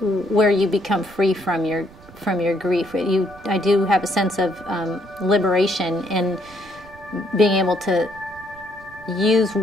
where you become free from your grief. I do have a sense of liberation in being able to use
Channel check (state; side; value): noise; right; rumble, 22 dB below the sound